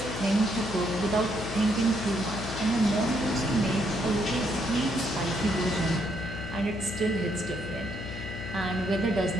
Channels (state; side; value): noise; left; hum, 8 dB below the sound